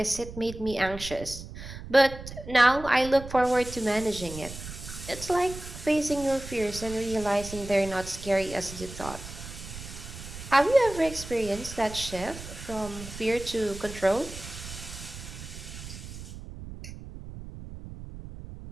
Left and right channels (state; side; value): noise; right; rumble, 12 dB below the sound